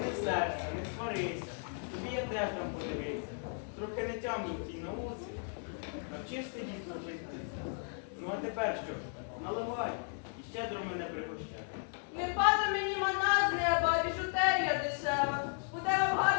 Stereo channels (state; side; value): silent; right; 54 dB below the other